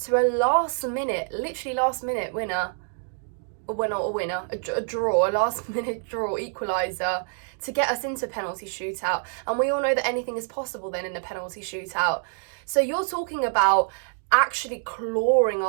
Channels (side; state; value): left; silent; 61 dB below the other